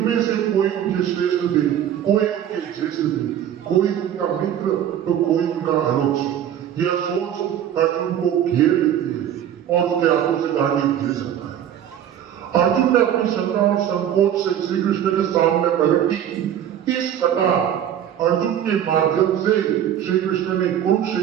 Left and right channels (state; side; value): quieter; left; 10.2 dB